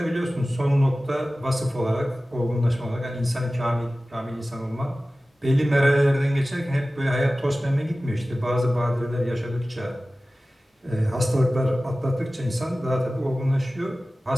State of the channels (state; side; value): normal; both; correlation 0.96